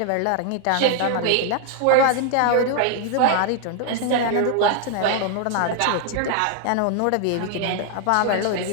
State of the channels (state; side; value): different; both; correlation 0.00